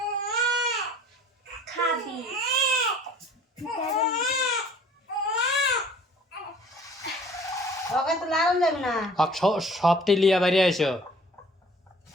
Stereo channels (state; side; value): normal; both; correlation 0.51